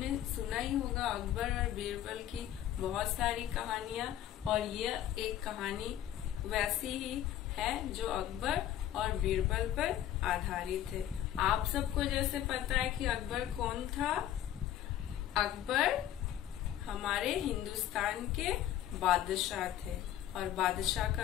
सुना ही होगा, अकबर और बीरबल की बहुत सारी कहानियां, और यह एक कहानी वैसी ही है जो अकबर और बीरबल पर आधारित है। आप सबको जैसे पता है कि अकबर कौन था। अकबर हमारे हिंदुस्तान के बादशाह थे, और बादशाह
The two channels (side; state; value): right; quieter; 11.8 dB